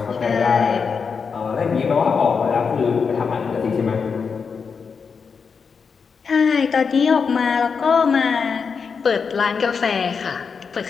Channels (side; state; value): right; quieter; 5.7 dB